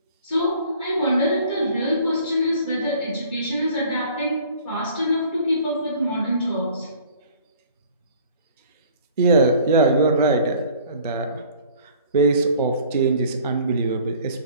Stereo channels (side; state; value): both; inverted; correlation -0.52